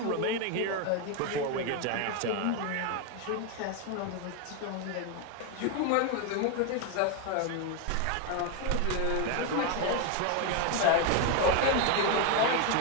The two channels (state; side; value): different; both; correlation 0.01